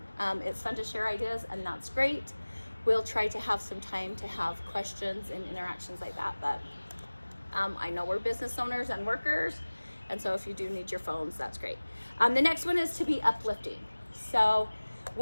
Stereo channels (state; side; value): inverted; both; correlation -1.00